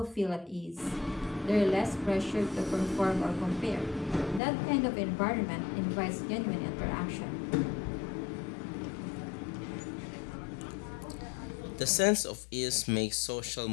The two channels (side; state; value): right; drops out; at 4.4 s